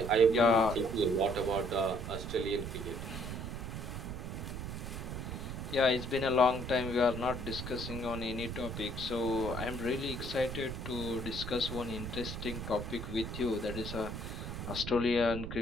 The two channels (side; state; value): right; noise; rumble, 6 dB below the sound